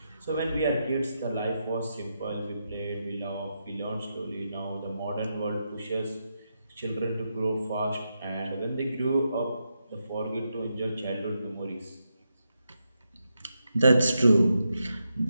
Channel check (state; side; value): inverted; both; correlation -0.85